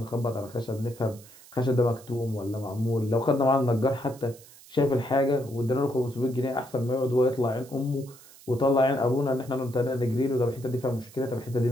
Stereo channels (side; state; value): right; noise; hiss, 22 dB below the sound